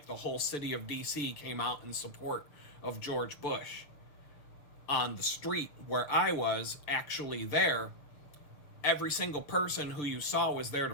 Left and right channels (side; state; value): right; late; 6.8 ms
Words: the whole city of D.C. came out in support of George Bush. On the street where I was actually there, every single person who you saw was there to